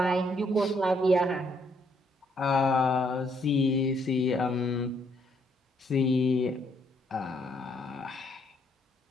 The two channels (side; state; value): both; normal; correlation 0.71